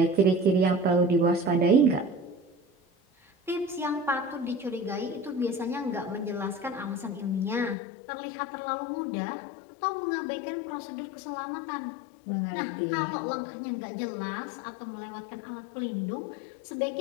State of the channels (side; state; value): right; drops out; at 7.8 s